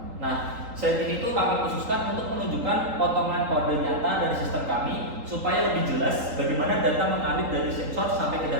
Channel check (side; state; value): left; late; 3.8 ms